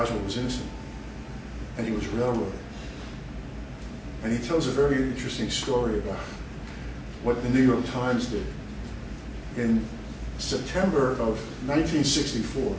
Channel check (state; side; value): identical; both; correlation 1.00